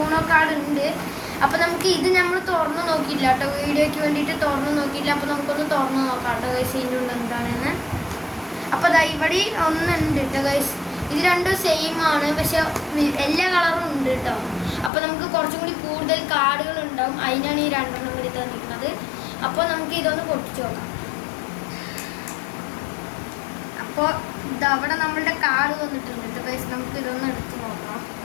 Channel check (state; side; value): drops out; right; at 14.9 s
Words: കാർഡ് ഉണ്ട്. അപ്പോൾ നമുക്ക് ഇത് നമ്മൾ തുറന്ന് നോക്കിയില്ല കേട്ടോ, വീഡിയോയ്ക്ക് വേണ്ടിയിട്ട് തുറന്ന് നോക്കിയില്ല. അപ്പോൾ നമുക്കൊന്ന് തുറന്ന് നോക്കാം കേട്ടോ ഗൈസ് ഇതിൻ്റെ ഉള്ളിൽ എന്താണെന്ന്. അപ്പോൾ ദാ ഇവിടെ ഒന്നുണ്ട് കേട്ടോ ഗൈസ്. ഇത് രണ്ടും സെയിം ആണ്, പക്ഷെ എല്ലാ കളറും ഉണ്ട് കേട്ടോ. അപ്പോൾ നമുക്ക് കുറച്ചും കൂടി കൂടുതൽ കാർഡുകൾ ഉണ്ടാവും, അതിനാണ് ഈ 2 എണ്ണം കൂടി തന്നിരിക്കുന്നത്. അപ്പോൾ നമുക്ക് ഇതൊന്ന് പൊട്ടിച്ച് നോക്കാം. അപ്പോൾ ഇതവിടെ നമ്മളുടെ കാർഡ് വന്നിട്ടുണ്ട് കേട്ടോ ഗൈസ്. നമുക്ക് ഇതൊന്ന് എടുത്ത് നോക്കാം.